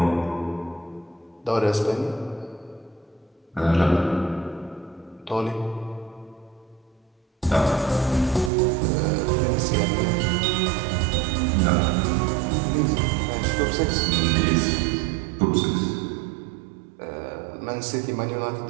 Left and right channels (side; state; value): left; drops out; at 8.5 s